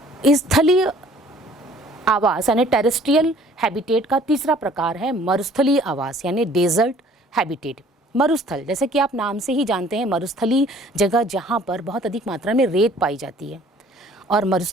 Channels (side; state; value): both; normal; correlation 0.54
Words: स्थलीय आवास यानी टेरेस्ट्रियल हैबिटेट का तीसरा प्रकार है मरुस्थलीय आवास यानी डेजर्ट हैबिटेट। मरुस्थल, जैसे कि आप नाम से ही जानते हैं, मरुस्थलीय जगह जहाँ पर बहुत अधिक मात्रा में रेत पाई जाती है और